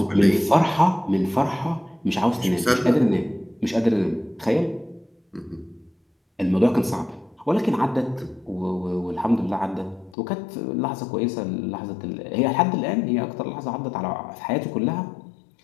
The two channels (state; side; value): drops out; right; at 10.2 s